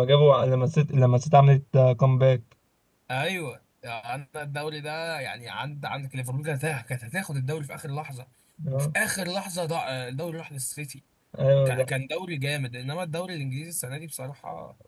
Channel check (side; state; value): both; identical; correlation 1.00